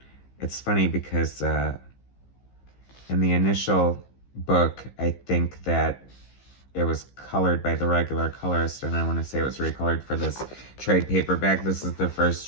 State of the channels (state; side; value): late; right; 15 ms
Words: it's funny because in the initial book, I think that it was colored by the regular colorist, and I want to say it was recolored for this trade paperback. This is the first